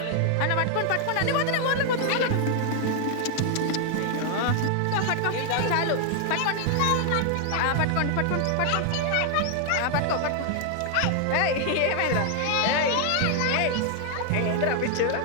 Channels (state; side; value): different; both; correlation 0.00